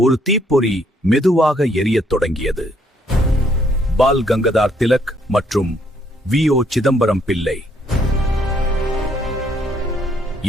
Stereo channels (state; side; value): normal; both; correlation 0.69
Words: ஒரு தீப்பொறி மெதுவாக எரியத் தொடங்கியது. பால் கங்காதர் திலக் மற்றும் வி.ஓ. சிதம்பரம் பிள்ளை